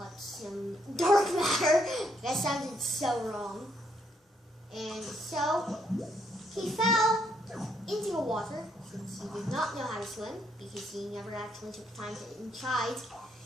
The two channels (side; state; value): both; normal; correlation 0.73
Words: some dark matter. That sounded so wrong. And so he fell into the water, since he did not know how to swim, because he never actually took time to tried.